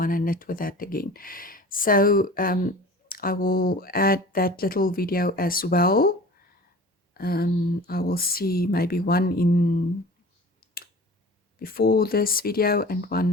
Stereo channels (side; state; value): both; normal; correlation 0.41